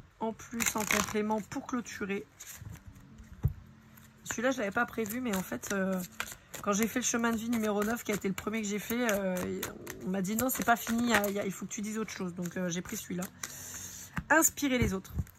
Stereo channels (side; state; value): both; identical; correlation 1.00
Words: en plus, en complément, pour clôturer. Celui-là, je ne l'avais pas prévu, mais en fait, quand j'ai fait le chemin de vie numéro 9, qui a été le premier que j'ai fait, on m'a dit non, c'est pas fini, il faut que tu dises autre chose. Donc, j'ai pris celui-là. Inspirez les autres.